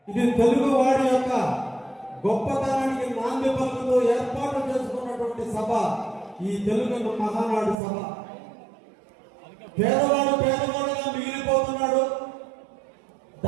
ఇది తెలుగు వారి యొక్క గొప్పతనానికి నాంది పలుకుతూ ఏర్పాటు చేసుకున్నటువంటి సభ ఈ తెలుగు మహానాడు సభ. పేదవాడు పేదవాడుగా మిగిలిపోతున్నాడు,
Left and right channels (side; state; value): left; drops out; at 7.8 s